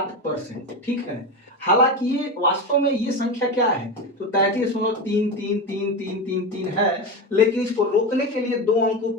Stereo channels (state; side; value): normal; both; correlation 0.19